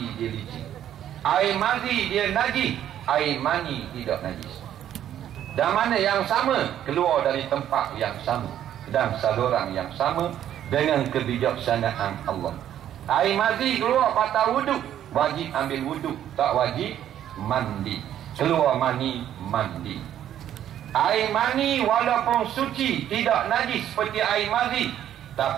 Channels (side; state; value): left; quieter; 10.9 dB